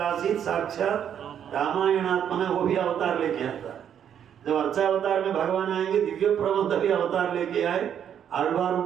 साक्षात रामायणात्मना, वो भी अवतार लेके आता है। जब अर्चा अवतार में भगवान आएंगे, दिव्य प्रबंध भी अवतार लेके आए आलवारों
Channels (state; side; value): quieter; left; 9.0 dB